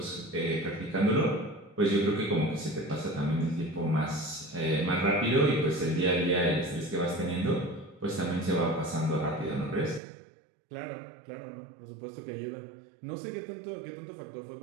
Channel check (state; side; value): drops out; left; at 10.0 s